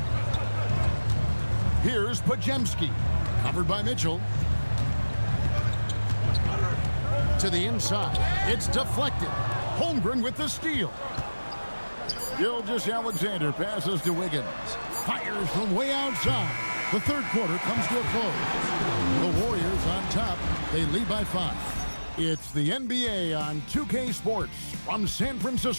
Here's Podziemski. Covered by Mitchell. To the inside. It's deflected. Holmgren with the steal. Gilgeous-Alexander passes to Wiggins. Fires from way outside. The third quarter comes to a close. The Warriors on top. They lead by 5. It's the NBA on 2K Sports from San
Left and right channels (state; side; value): inverted; both; correlation -1.00